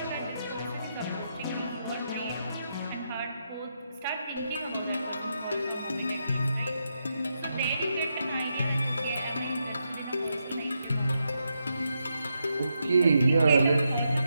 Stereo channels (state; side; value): inverted; both; correlation -0.83